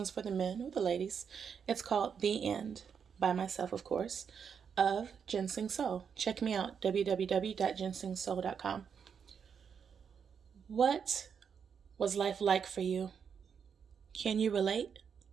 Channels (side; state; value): left; quieter; 6.9 dB